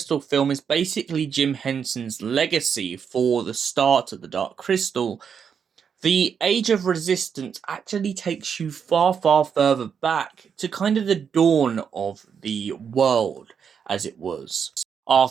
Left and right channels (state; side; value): quieter; left; 7.0 dB